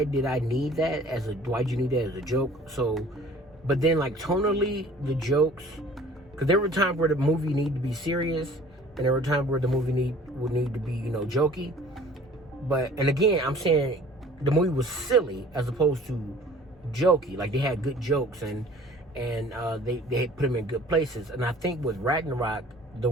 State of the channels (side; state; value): both; normal; correlation 0.49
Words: did I need that why'd you need that as a joke? So, but then, like, tonally, the jokes, because there were times where the movie needed to be serious, and there were times where the movie would need to be, jokey. And again, I'm saying the movie was silly as opposed to jokey. Like, they had good jokes, and they put them in good places. And I think with Ragnarok, the